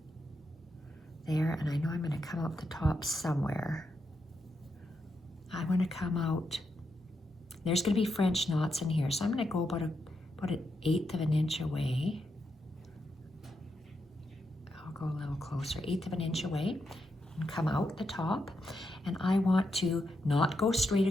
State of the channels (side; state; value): both; normal; correlation 0.84